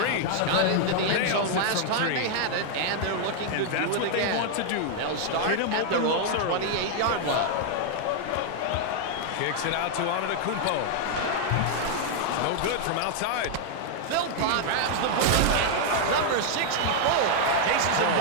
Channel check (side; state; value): both; different; correlation -0.01